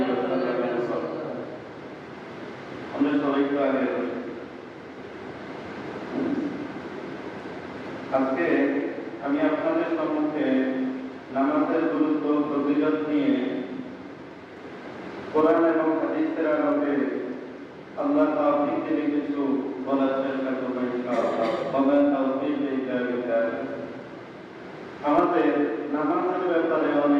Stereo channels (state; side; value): identical; both; correlation 1.00